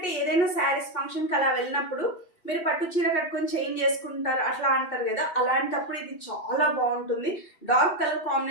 ఏదైనా శారీస్ ఫంక్షన్కి అలా వెళ్ళినప్పుడు మీరు పట్టు చీర కట్టుకొని చేంజ్ చేసుకుంటారు అట్లా అంటారు కదా, అలాంటప్పుడు ఇది చాలా బాగుంటుంది. డార్క్ కలర్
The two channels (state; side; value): late; right; 2.6 ms